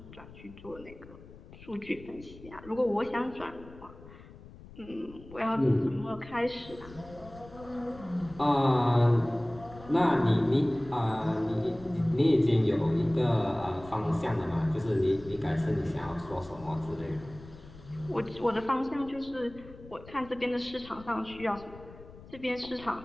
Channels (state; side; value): noise; left; rumble, 19 dB below the sound